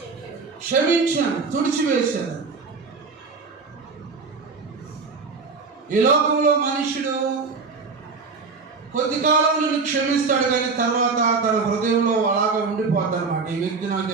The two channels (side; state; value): left; quieter; 4.6 dB